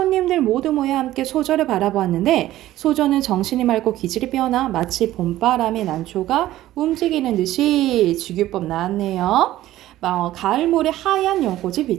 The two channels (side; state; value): left; quieter; 14.7 dB